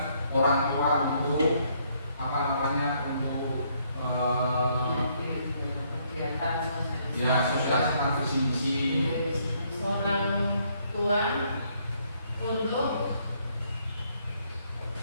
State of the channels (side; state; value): both; inverted; correlation -0.69